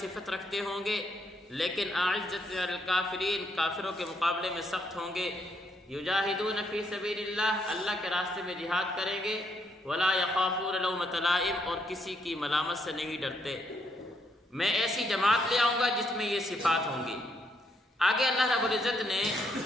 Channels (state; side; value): normal; both; correlation 0.74